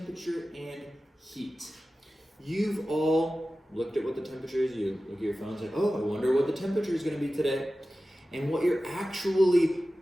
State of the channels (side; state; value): both; normal; correlation 0.95